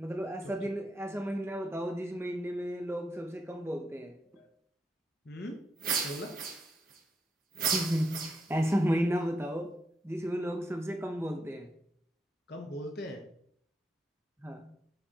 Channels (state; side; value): normal; both; correlation 0.81